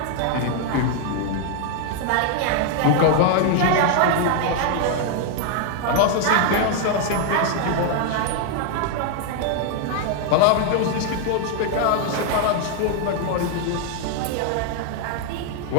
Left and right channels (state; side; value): different; both; correlation 0.00